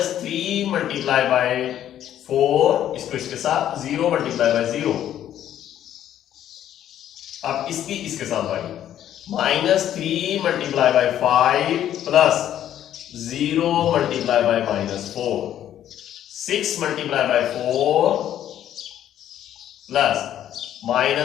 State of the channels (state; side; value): quieter; right; 11.1 dB